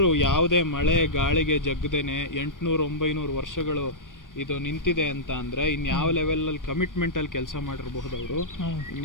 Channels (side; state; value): right; late; 0.89 ms